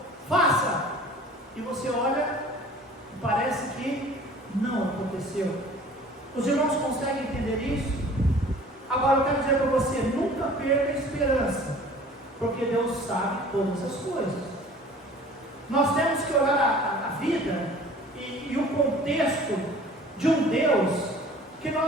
faça, e você olha e parece que não aconteceu. Os irmãos conseguem entender isso? Agora eu quero dizer para você: nunca perca a esperança, porque Deus sabe todas as coisas. Nós temos que olhar a vida e o contexto de um Deus que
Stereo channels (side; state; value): both; normal; correlation 0.47